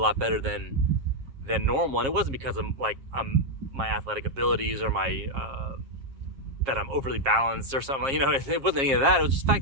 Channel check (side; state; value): left; late; 7.4 ms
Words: better than normal. And it wasn't because of my athletic abilities or my that I'm overly balanced or something. It wasn't any of that. It was just the fact